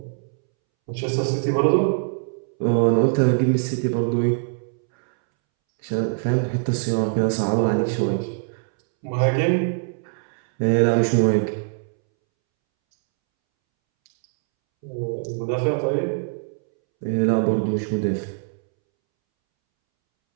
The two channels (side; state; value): left; silent; 64 dB below the other